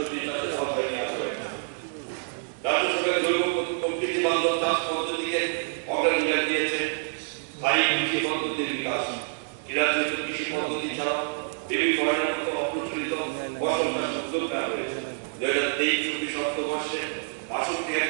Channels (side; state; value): left; silent; digital silence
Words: চাষের আওতায় নিয়ে আসা হয়েছে। রাজ্য সরকার জৈব প্রকৃতি বান্ধব চাষ পদ্ধতিকে অগ্রাধিকার দিয়েছে। স্থায়ী কৃষি পদ্ধতির বিকাশ। রাজ্যে কৃষি পদ্ধতি ছাড়া বেবি ফরেনের মতো অপ্রচলিত ফসল চাষ উদ্যোগ নেওয়া হয়েছে। 2023-24 অর্থবর্ষে 62